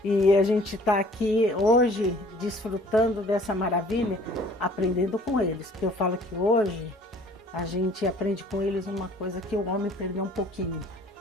e a gente está aqui hoje desfrutando dessa maravilha, aprendendo com eles, porque eu falo que hoje a gente aprende com eles uma coisa que o homem perdeu um pouquinho:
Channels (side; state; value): both; normal; correlation 0.54